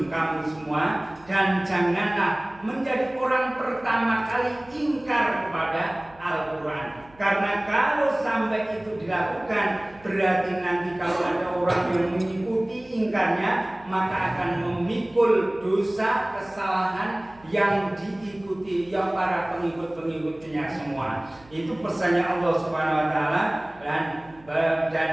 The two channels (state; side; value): noise; right; hum, 26 dB below the sound